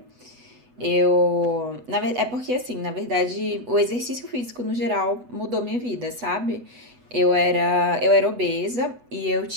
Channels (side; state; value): left; late; 8.1 ms